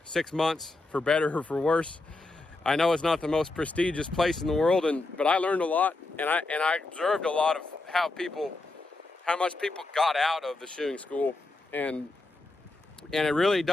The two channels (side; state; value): right; quieter; 3.1 dB